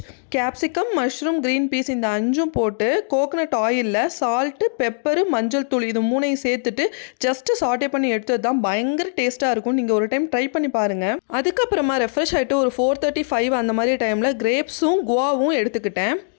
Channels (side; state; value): right; silent; digital silence